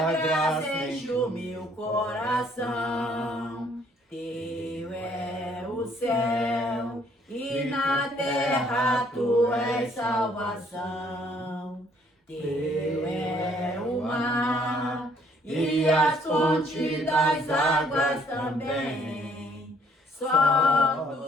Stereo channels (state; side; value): normal; both; correlation 0.64